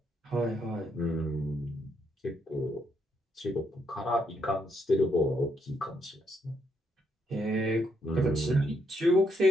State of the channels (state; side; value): normal; both; correlation 0.76